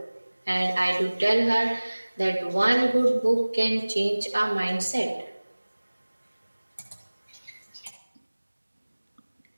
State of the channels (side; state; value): both; inverted; correlation -1.00